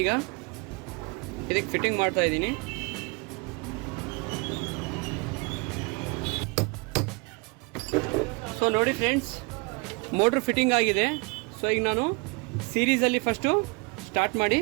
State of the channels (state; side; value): quieter; left; 30.3 dB